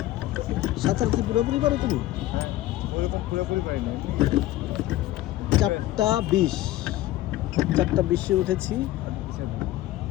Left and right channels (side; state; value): right; quieter; 15.4 dB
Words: সাঁতার কি পুরোপুরি পারো তুমি পুরোপুরি পারিনি 4:20 4:20 উঠেছি